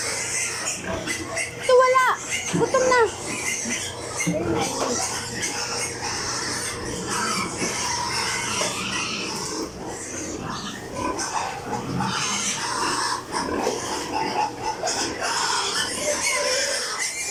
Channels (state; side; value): identical; both; correlation 1.00